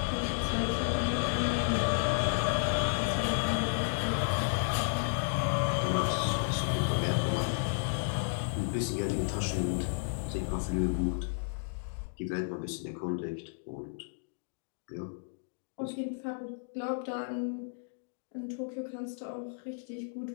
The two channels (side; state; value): right; silent; digital silence